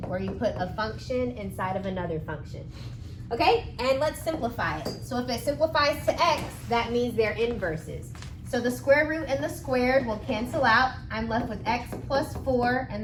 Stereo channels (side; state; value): both; identical; correlation 1.00